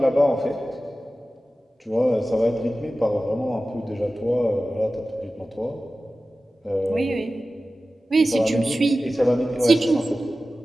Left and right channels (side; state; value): both; normal; correlation 0.95